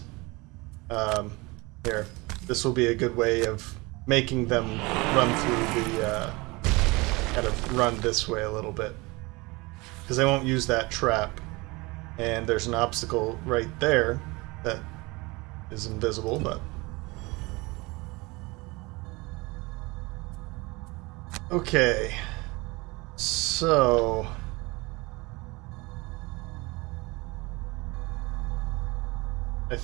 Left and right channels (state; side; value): quieter; left; 24.4 dB